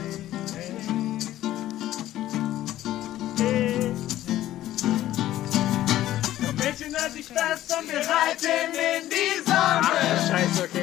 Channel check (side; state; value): right; quieter; 13.8 dB